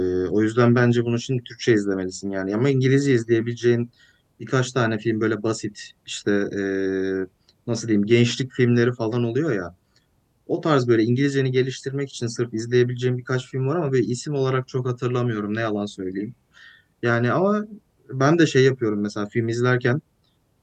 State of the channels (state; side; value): identical; both; correlation 1.00